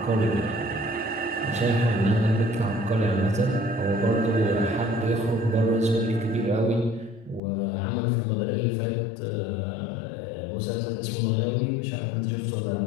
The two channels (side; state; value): right; drops out; at 7.4 s